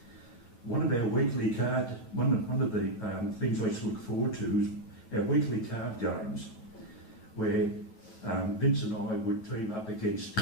One of the things I used to look forward to is our weekly card games, where Vince and I would team up against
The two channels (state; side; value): late; right; 9.1 ms